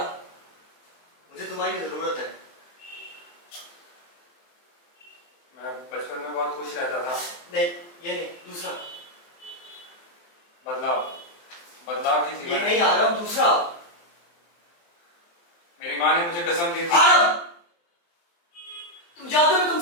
मुझे तुम्हारी जरूरत है। मैं बचपन में बहुत खुश रहता था। नहीं, ये नहीं, दूसरा। बदलाव बदलाव ही ये जीवन है। नहीं आरव, दूसरा। मेरी माँ ने मुझे कसम दी थी। आरव, तुम जानते हो मैं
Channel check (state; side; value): late; right; 23 ms